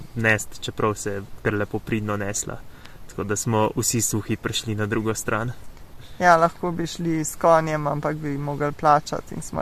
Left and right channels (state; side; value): identical; both; correlation 1.00